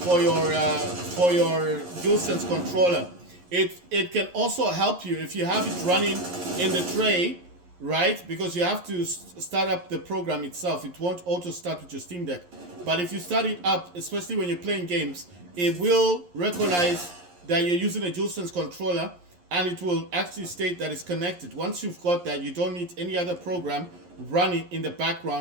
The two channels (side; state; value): left; late; 11 ms